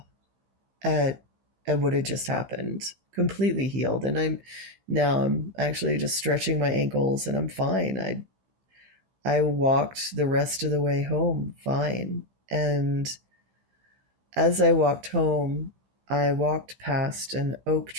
at what had just happened. Completely healed, and I'm actually just stretching my ankles and I'm fine. I walked the rest of the way home fine. And as I walked home, I walked past an oak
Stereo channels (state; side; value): late; left; 15 ms